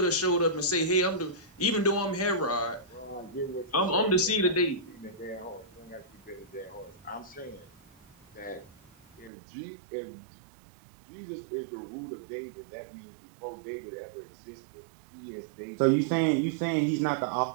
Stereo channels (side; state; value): left; drops out; at 9.3 s